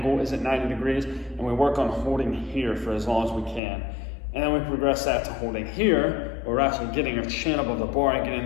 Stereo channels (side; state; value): right; drops out; at 3.6 s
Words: is at 90 degrees, and we work on holding here for as long as we can. And then we progress that to holding here, where we're actually getting our chin above the bar and getting